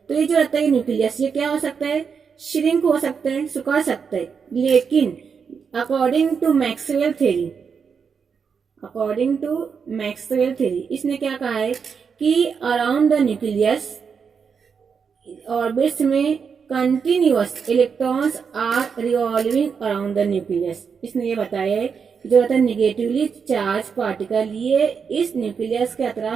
तो ये जो रहता है न्यूक्लियस, ये क्या हो सकता है, श्रिंक हो सकता है, सुखा सकता है। लेकिन according to Maxwell theory, according to Maxwell theory इसने क्या कहा है कि अराउंड द न्यूक्लियस ऑर्बिट्स में continuous electrons are revolving around the nucleus. इसने ये बताया है जो रहता है निगेटिवली चार्ज पार्टिकल, ये इस न्यूक्लियस के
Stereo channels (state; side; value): quieter; left; 6.2 dB